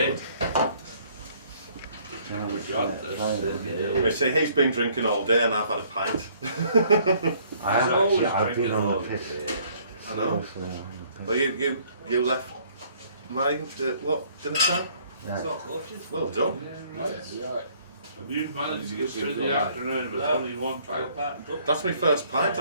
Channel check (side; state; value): both; inverted; correlation -0.61